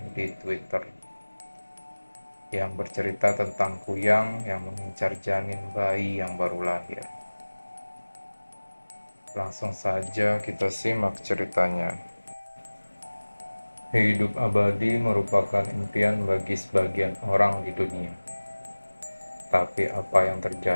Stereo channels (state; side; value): inverted; both; correlation -1.00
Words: di Twitter, yang bercerita tentang kuyang yang mengincar janin bayi yang baru lahir. Langsung saja kita simak ceritanya. Hidup abadi merupakan impian bagi sebagian orang di dunia. Tapi apa yang